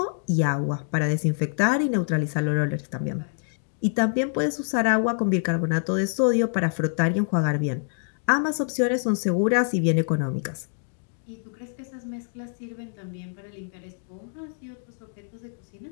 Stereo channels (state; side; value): silent; right; digital silence